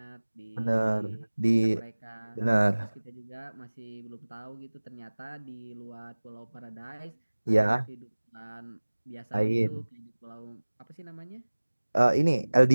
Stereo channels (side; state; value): both; inverted; correlation -1.00